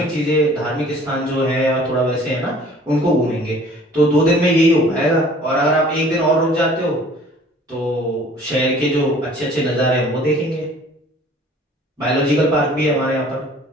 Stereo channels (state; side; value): normal; both; correlation 0.51